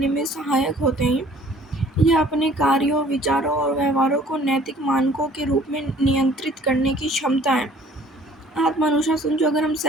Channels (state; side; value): normal; both; correlation 0.54